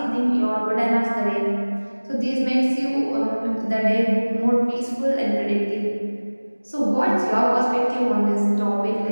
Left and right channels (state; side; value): inverted; both; correlation -1.00